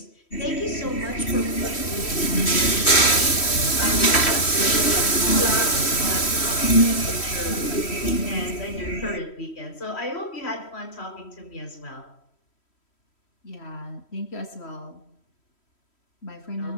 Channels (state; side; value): late; right; 3.1 ms